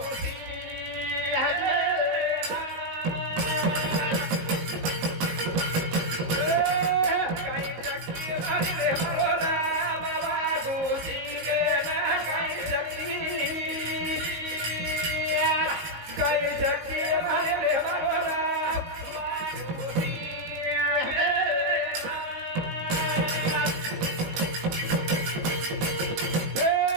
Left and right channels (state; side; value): late; left; 19 ms